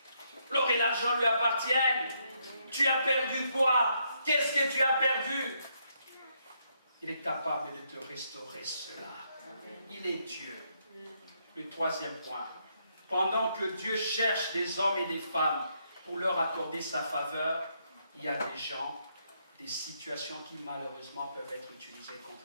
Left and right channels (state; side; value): inverted; both; correlation -0.75